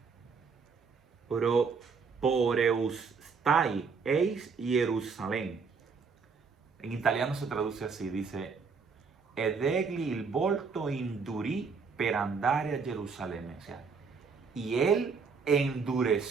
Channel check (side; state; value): left; quieter; 5.2 dB